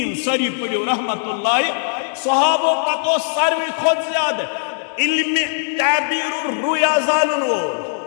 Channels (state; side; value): silent; right; digital silence